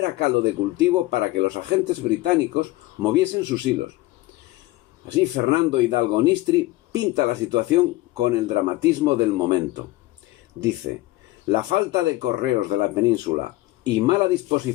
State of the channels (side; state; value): right; quieter; 18.7 dB